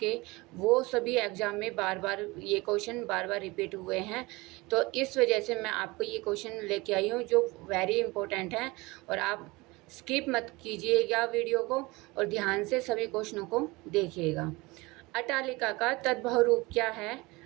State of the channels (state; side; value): quieter; left; 23.1 dB